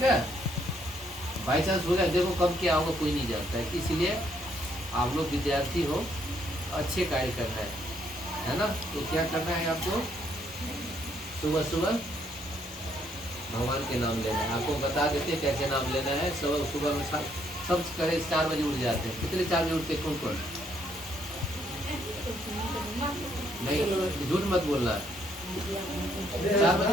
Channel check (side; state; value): both; normal; correlation 0.71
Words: है? बाई चांस हो गया, देखो कब क्या होगा कोई नहीं जानता है। इसीलिए आप लोग विद्यार्थी हो, अच्छे कार्य करना है ना। तो क्या करना है आपको? सुबह सुबह भगवान के नाम लेना है। आपको बता देते हैं कैसे नाम लेना है। सुबह में सब करे 4 बजे उठ जाते हैं। कितने 4 बजे उठते कौन कौन? नहीं, झूठ मत बोलना। 4